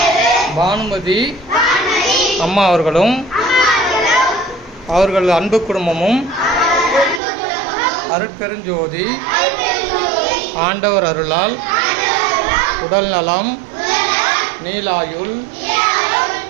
பானுமதி அம்மா அவர்களும் அவர்கள் அன்பு குடும்பமும் அருட்பெருஞ்சோதி ஆண்டவர் அருளால் உடல் நலம் நீலாயுள்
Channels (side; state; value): left; drops out; at 7.2 s